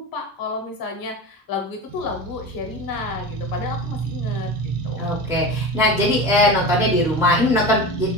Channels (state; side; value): normal; both; correlation 0.28